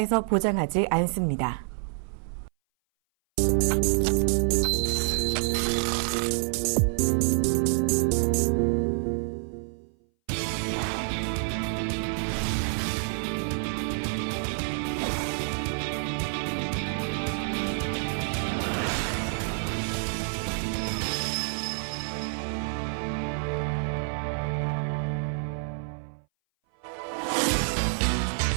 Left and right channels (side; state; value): left; silent; 58 dB below the other